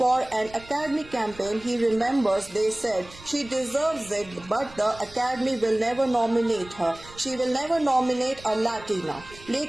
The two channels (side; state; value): right; noise; rumble, 20 dB below the sound